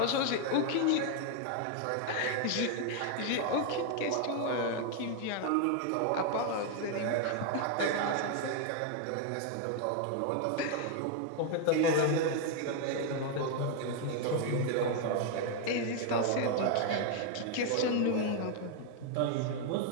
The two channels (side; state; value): both; different; correlation 0.00